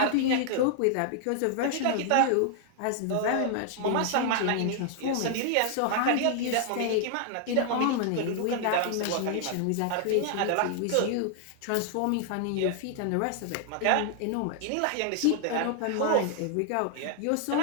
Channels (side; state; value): both; different; correlation 0.00